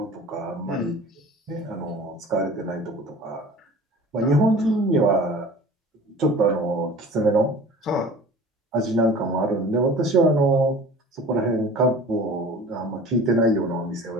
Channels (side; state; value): both; normal; correlation 0.43